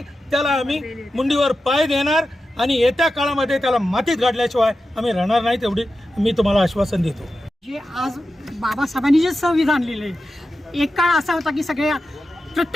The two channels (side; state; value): both; normal; correlation 0.91